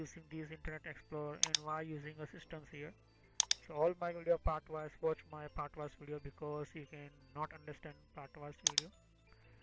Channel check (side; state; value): both; identical; correlation 1.00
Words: this Internet Explorer, and why using a systems here. So all my video part wise, watch my part wise video because you can not understand part wise video.